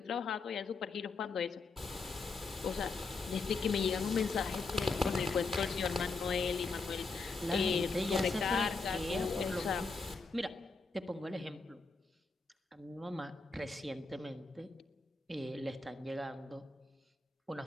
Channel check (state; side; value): quieter; right; 4.1 dB